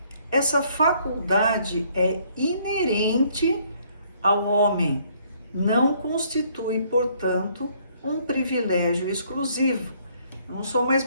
Essa faculdade é inerente ao homem, não constitui, portanto, um privilégio exclusivo. Eu não sou mais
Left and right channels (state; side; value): inverted; both; correlation -0.64